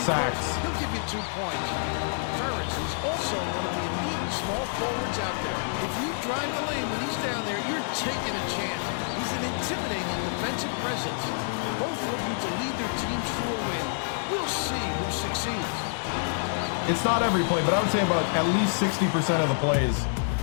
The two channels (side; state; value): right; silent; digital silence